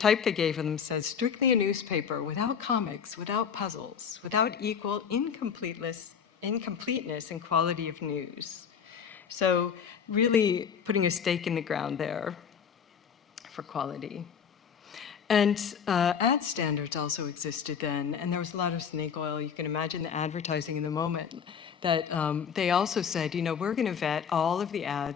they gave them says, strictly a newspaper, without comics, without puzzles, without equal incompleteness and quality of news. So really putting a stake in the ground there for quality. And ad standards also existed then, and there was a lot of snake oil. You can imagine the advertising in the moment that they also said, we're going to vet all of the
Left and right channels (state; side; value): quieter; right; 7.2 dB